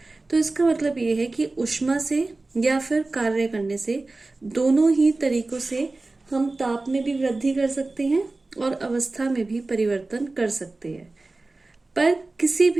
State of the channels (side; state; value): left; quieter; 3.2 dB